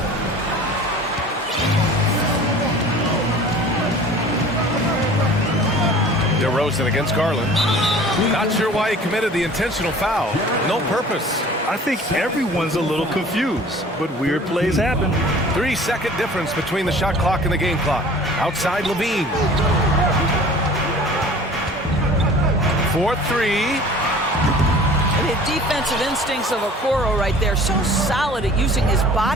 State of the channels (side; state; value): both; normal; correlation 0.46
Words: DeRozan against Garland. Not sure why he committed the intentional foul. No purpose. I think everyone's a little confused, but weird plays happen. 3-second difference between the shot clock and the game clock. Outside Levine. 4-3. The defensive instincts of Okoro right there, so solid at using his